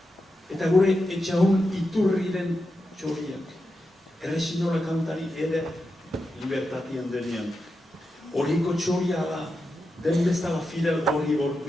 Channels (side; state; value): both; normal; correlation 0.88